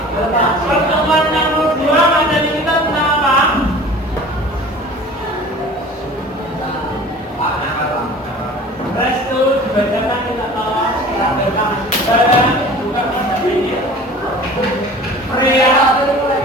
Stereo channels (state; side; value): normal; both; correlation 0.43